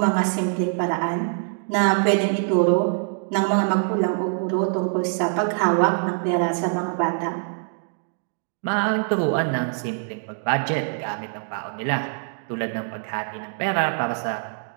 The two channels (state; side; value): silent; left; 63 dB below the other